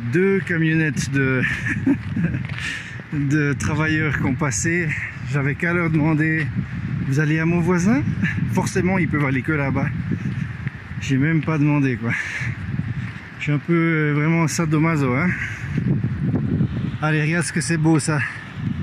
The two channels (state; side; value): identical; both; correlation 1.00